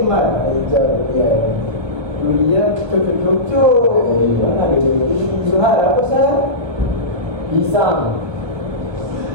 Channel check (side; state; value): left; late; 1.3 ms